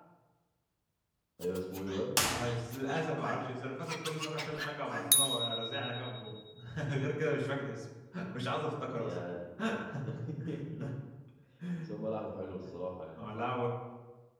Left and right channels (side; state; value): both; identical; correlation 1.00